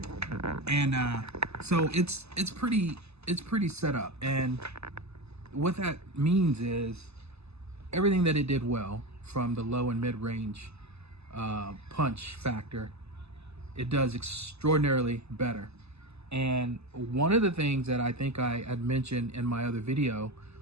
and so it's pretty set up. And what that means is everything that it did well, from the low and mid range punch factor, it does extraordinarily better. And one of the things that I think I had mentioned in my other video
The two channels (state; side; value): late; left; 0.79 ms